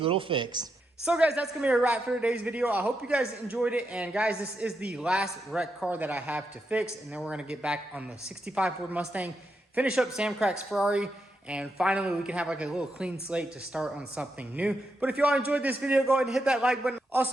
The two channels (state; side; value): normal; both; correlation 0.84